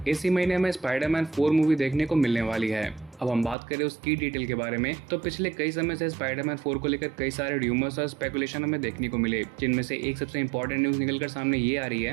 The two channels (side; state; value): left; drops out; at 3.6 s